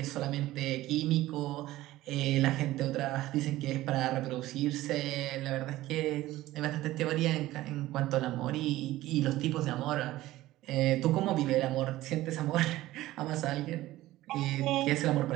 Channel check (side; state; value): left; quieter; 16.3 dB